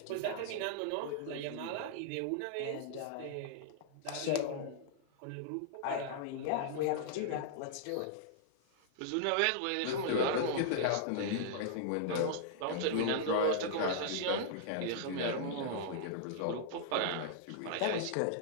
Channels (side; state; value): both; different; correlation -0.01